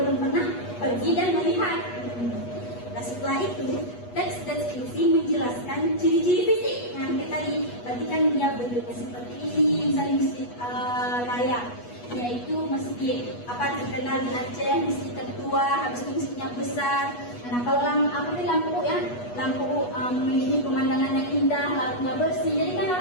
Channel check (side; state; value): right; late; 8.3 ms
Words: pernah pergi dan melihat. Nah, setelah itu teks deskripsi menjelaskan ciri-ciri fisik. Nah, kayak tadi, berarti kan dia bentuknya seperti ini, misalnya Masjid Raya, yaitu masjid terkenal di Aceh, masjid tertua, habis itu masjidnya besar. Nah, kalau lampu ya, memiliki pemandangan yang indah, lautnya bersih, jadi kan